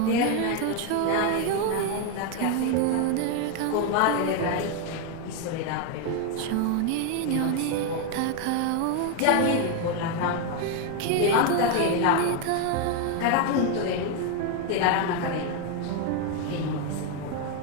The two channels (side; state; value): both; different; correlation 0.01